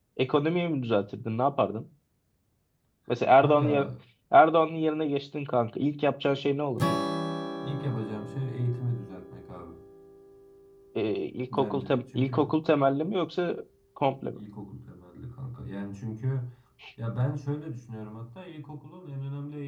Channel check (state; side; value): identical; both; correlation 1.00